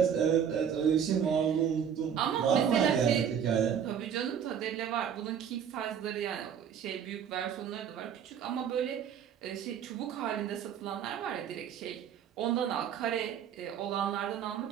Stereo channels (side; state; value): left; quieter; 8.3 dB